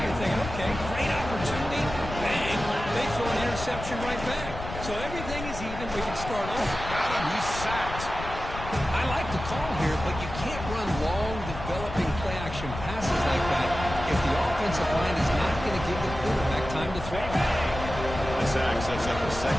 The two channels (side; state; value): left; noise; rumble, 9 dB below the sound